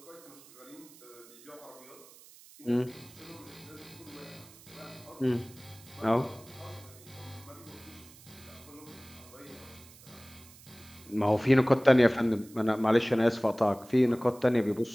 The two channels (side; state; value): right; noise; hiss, 22 dB below the sound